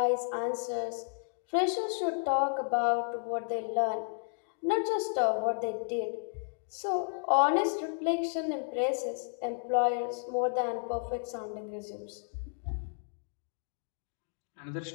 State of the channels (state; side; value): silent; right; digital silence